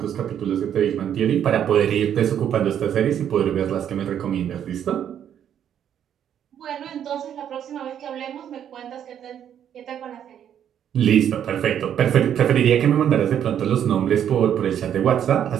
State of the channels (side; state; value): left; quieter; 9.5 dB